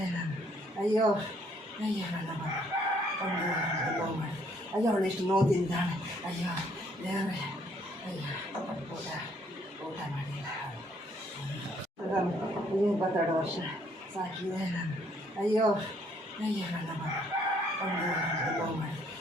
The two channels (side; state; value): both; normal; correlation 0.66